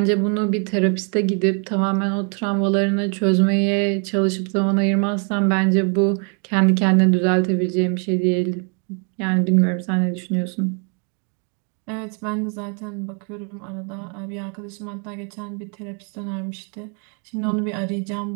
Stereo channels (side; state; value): left; quieter; 38.8 dB